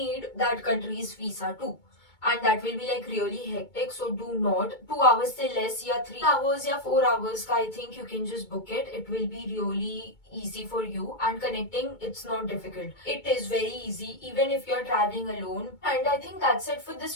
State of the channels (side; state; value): right; late; 2.2 ms